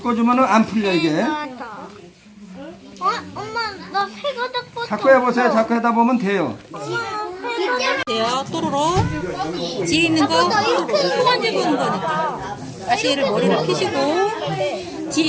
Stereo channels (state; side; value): identical; both; correlation 1.00